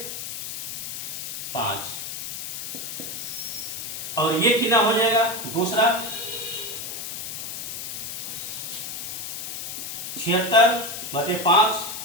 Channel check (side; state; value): left; noise; hiss, 6 dB below the sound